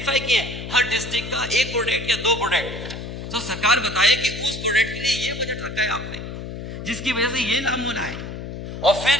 किए हर डिस्ट्रिक्ट का 1 प्रोडक्ट या 2 प्रोडक्ट। तो सरकार बताए कि उस प्रोडक्ट के लिए ये बजट रखा है आपने, जिसकी वजह से ये लाभ होना है, और फिर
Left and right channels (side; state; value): left; noise; hum, 8 dB below the sound